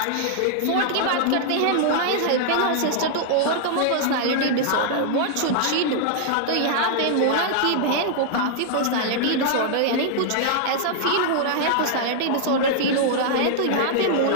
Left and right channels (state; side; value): different; both; correlation -0.01